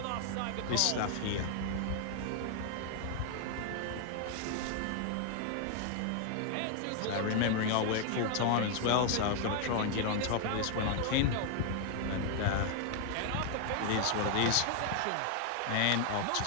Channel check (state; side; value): different; both; correlation 0.00